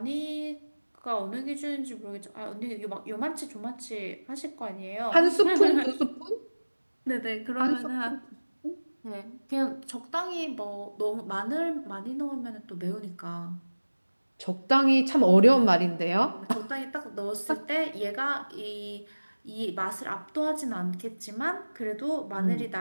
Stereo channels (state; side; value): inverted; both; correlation -1.00